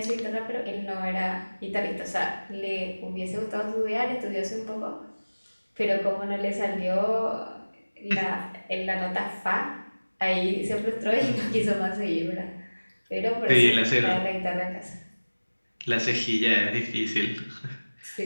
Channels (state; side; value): inverted; both; correlation -1.00